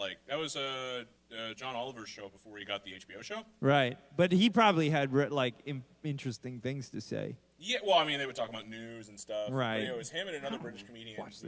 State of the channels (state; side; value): identical; both; correlation 1.00